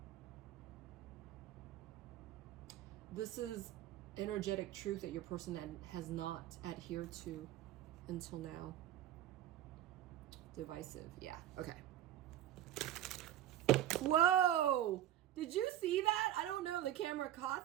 this is energetic truth that your person has not adhered to until now. Divisive. Yeah. Okay. Whoa! Did you see that? I don't know if the camera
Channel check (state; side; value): quieter; left; 12.3 dB